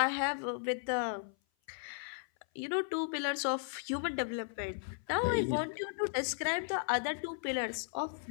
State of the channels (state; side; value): silent; right; 54 dB below the other